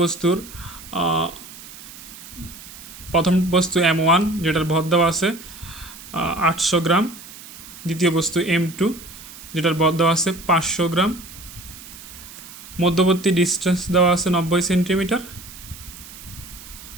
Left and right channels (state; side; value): noise; right; hiss, 16 dB below the sound